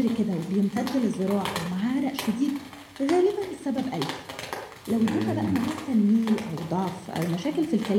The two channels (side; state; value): both; identical; correlation 1.00